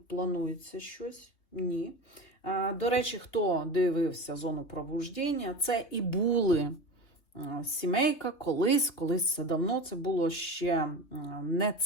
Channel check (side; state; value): right; late; 3.4 ms